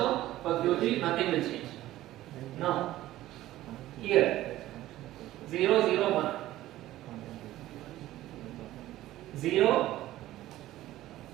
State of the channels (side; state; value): left; quieter; 15.1 dB